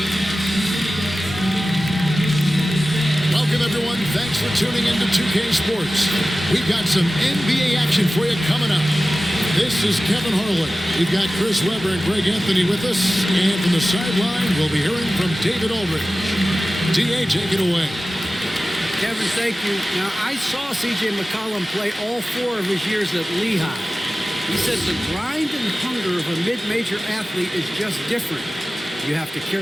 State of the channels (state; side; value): normal; both; correlation 0.95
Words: Welcome, everyone. Thanks for tuning in to 2K Sports. We've got some NBA action for you coming up. This is Kevin Harlan. We've got Chris Webber and Greg Anthony with us. And from the sideline, we'll be hearing from David Aldridge. D.A., take it away. Kevin, thank you. Now, I saw C.J. McCollum play all 4 of his years at Lehigh. He said the grind and hunger of a mid-major athlete is just different. You have to